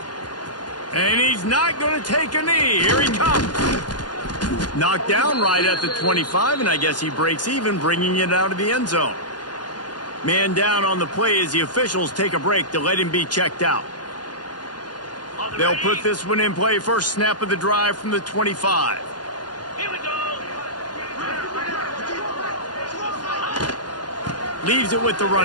And he's not going to take a knee. Here he comes. Knocked down right at the 25, and I guess he breaks even, bringing it out of the end zone. Man down on the play as the officials take a break to let him be checked out. They'll put this one in play. First snap of the drive from the 25. Here we go. Leaves it with the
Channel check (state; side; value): late; right; 0.70 ms